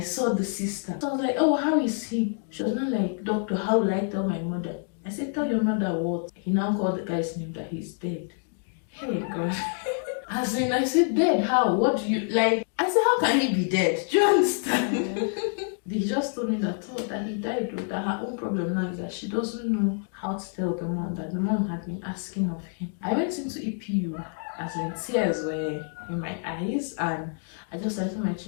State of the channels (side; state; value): right; silent; 56 dB below the other